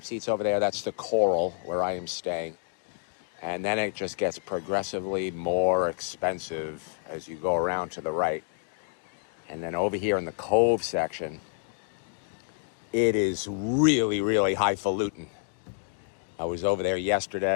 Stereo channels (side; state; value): right; silent; digital silence